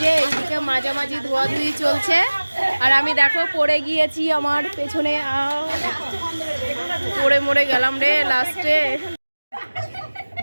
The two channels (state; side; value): inverted; both; correlation -1.00